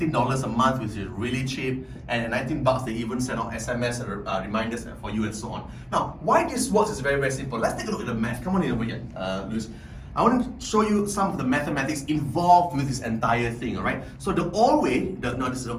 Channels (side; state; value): both; identical; correlation 1.00